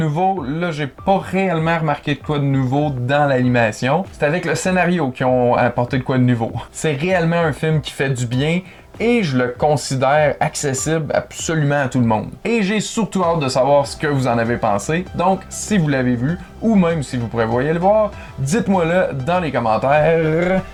Là, j'ai pas réellement remarqué de quoi de nouveau dans l'animation. C'est avec le scénario qu'ils ont apporté de quoi de nouveau. C'est réellement un film qui fait du bien et je le considère accessible absolument à tout le monde. Et j'ai surtout hâte de savoir ce que vous en avez pensé. Donc, si vous l'avez vu ou même si vous prévoyez le voir, dites-moi-le dans les commentaires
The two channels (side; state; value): both; identical; correlation 1.00